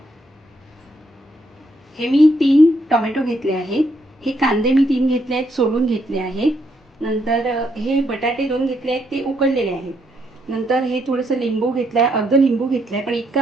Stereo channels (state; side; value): normal; both; correlation 0.75